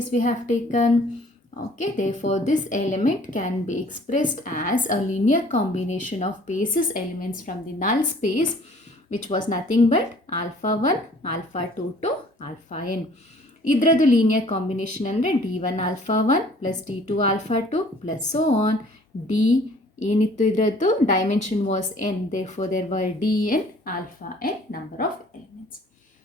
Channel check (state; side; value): normal; both; correlation 0.54